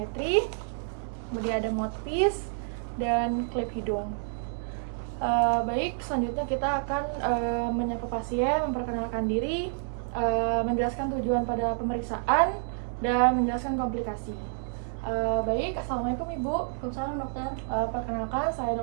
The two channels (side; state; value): left; silent; 57 dB below the other